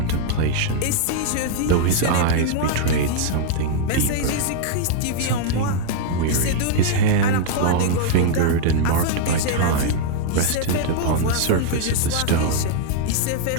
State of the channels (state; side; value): different; both; correlation 0.00